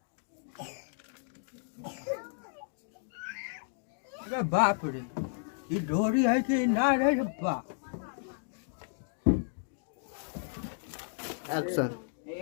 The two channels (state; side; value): silent; right; digital silence